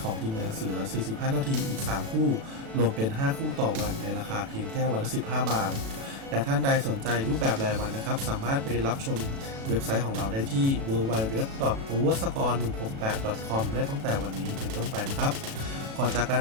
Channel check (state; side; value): late; left; 36 ms